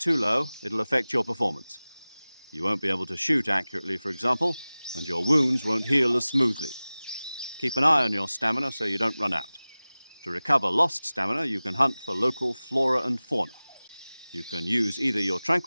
low, it'll affect your performance. You won't be able to shoot accurately, for example, and your wounds won't heal as smoothly. Keep an eye on your stamina so you don't run out. To recover lost stamina, you can hunt for local flora and fauna. You can use either your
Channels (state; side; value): inverted; both; correlation -0.98